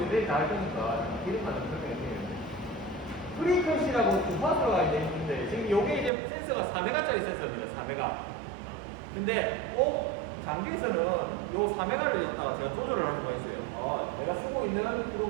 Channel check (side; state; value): left; drops out; at 6.1 s